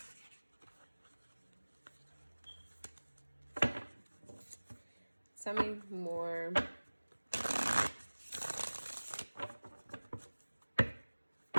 Tell me more.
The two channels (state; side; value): inverted; both; correlation -1.00